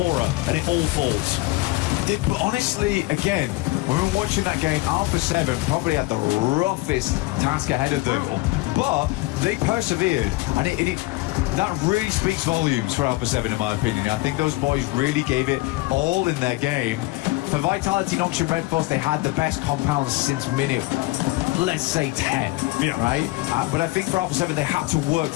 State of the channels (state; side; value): quieter; right; 20.8 dB